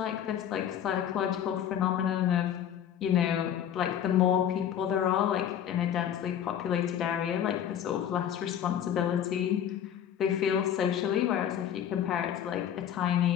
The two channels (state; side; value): quieter; right; 9.7 dB